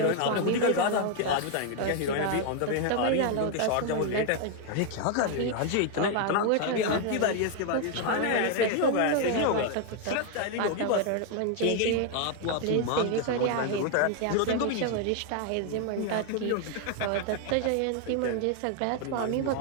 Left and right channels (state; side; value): different; both; correlation 0.00